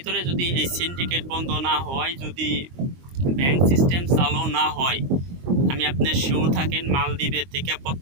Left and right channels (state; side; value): late; left; 22 ms